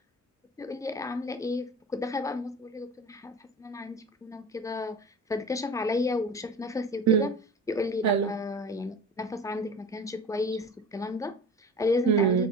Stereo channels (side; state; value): both; normal; correlation 0.36